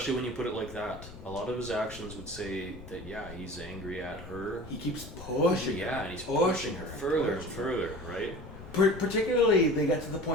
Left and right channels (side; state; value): left; noise; rumble, 15 dB below the sound